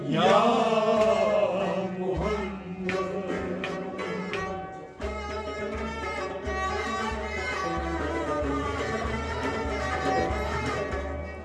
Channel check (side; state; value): both; identical; correlation 1.00